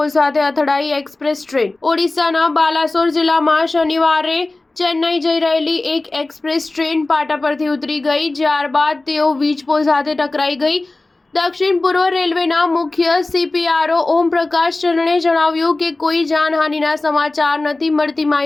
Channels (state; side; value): quieter; right; 3.1 dB